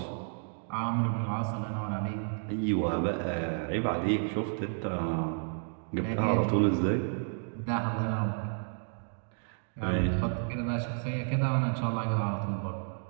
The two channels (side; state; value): left; silent; 57 dB below the other